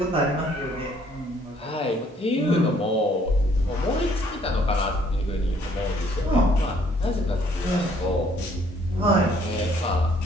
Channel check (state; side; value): normal; both; correlation 0.63